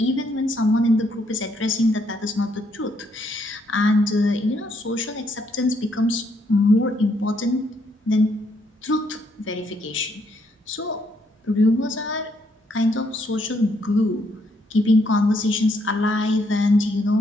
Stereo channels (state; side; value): normal; both; correlation 0.73